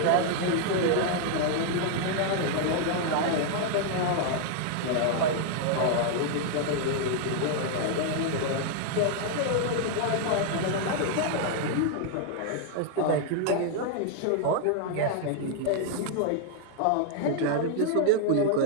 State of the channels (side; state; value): both; different; correlation 0.00